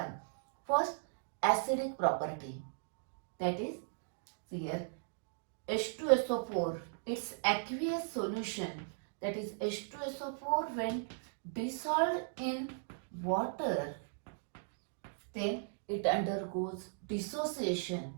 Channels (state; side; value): silent; left; digital silence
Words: First, acidic property, that is here H2SO4, its aqueous solution, that is H2SO4 when dissolved in water, then it undergoes dissociation,